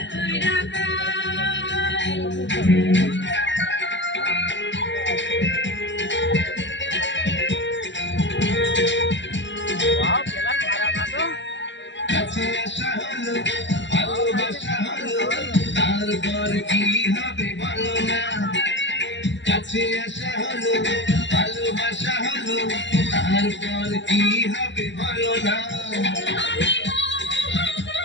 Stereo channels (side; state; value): right; late; 0.53 ms